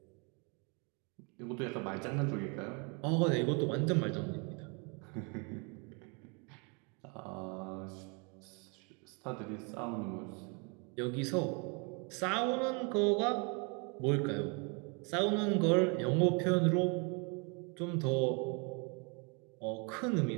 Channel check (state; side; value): quieter; left; 33.6 dB